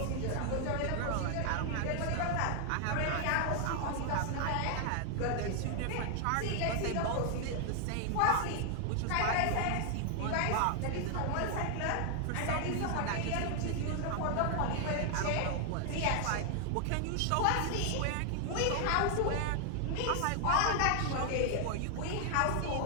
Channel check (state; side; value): different; both; correlation 0.00